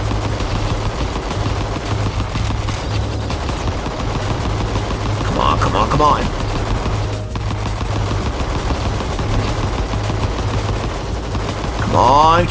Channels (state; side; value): identical; both; correlation 1.00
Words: Come on, come on, come on. Come on,